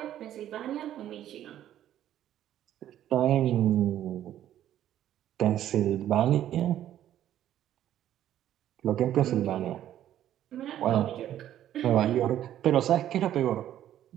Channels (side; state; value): left; quieter; 11.7 dB